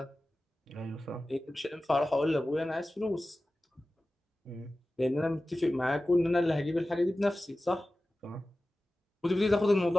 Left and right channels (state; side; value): normal; both; correlation 0.95